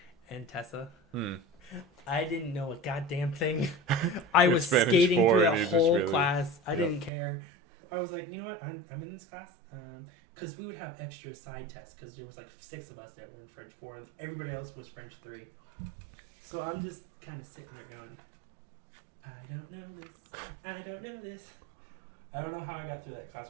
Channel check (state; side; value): drops out; left; at 7.1 s